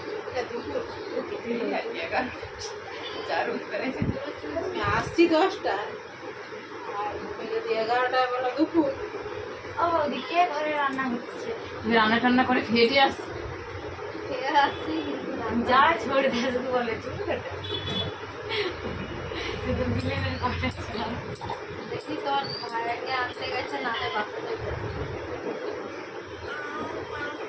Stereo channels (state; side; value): identical; both; correlation 1.00